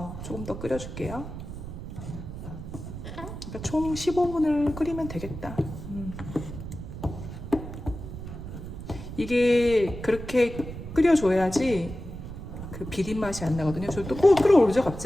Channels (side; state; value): right; noise; rumble, 9 dB below the sound